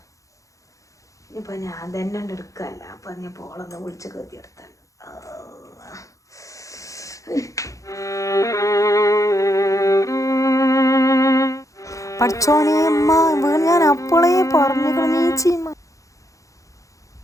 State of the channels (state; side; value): late; right; 0.16 ms